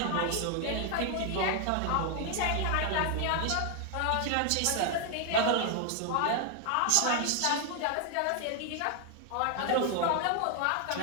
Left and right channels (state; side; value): different; both; correlation 0.00